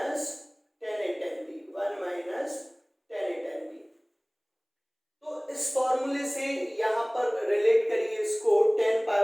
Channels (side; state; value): both; identical; correlation 1.00